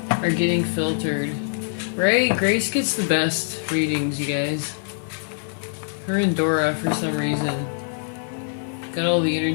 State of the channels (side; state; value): right; silent; digital silence